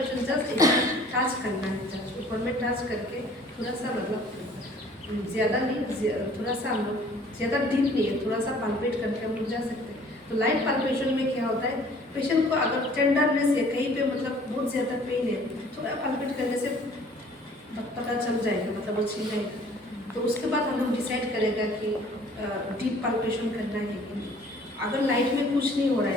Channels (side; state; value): both; normal; correlation 0.53